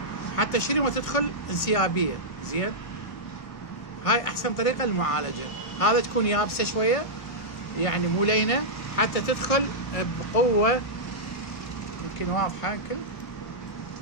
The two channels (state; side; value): late; right; 1.5 ms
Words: حتى شنو تدخل انسيابيه. زين، هاي احسن طريقه للمعالجه. هذا تكون يابسه شويه يعني مو لينه حتى تدخل بقوه. يمكن واضحه يمكن،